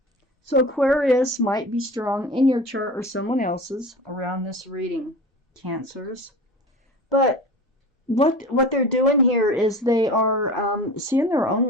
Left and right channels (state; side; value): normal; both; correlation 0.35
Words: So Aquarius might be strong in your chart or someone else's around this reading, Cancers. But what they're doing here is they are seeing their